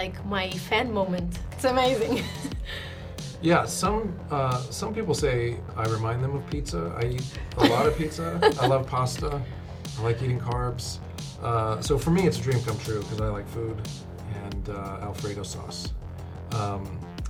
my fan moment. It's amazing. Yeah, some people say I remind them of pizza. I eat a lot of pizza. I love pasta. I like eating carbs. So for me, it's a dream come true because I like food and Alfredo sauce.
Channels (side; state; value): both; identical; correlation 1.00